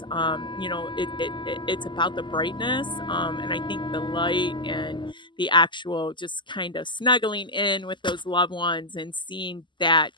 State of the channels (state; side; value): late; right; 0.23 ms